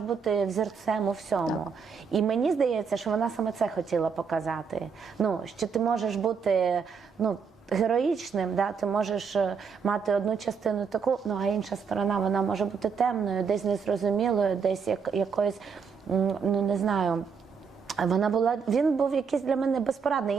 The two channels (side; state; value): left; quieter; 6.0 dB